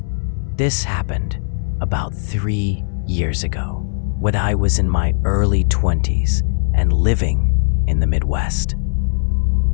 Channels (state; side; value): silent; right; digital silence